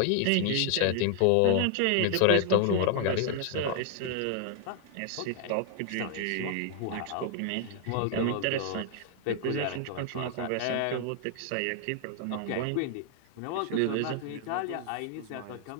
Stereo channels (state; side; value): different; both; correlation 0.00